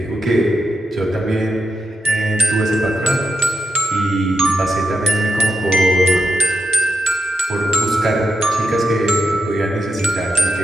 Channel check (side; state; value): both; normal; correlation 0.86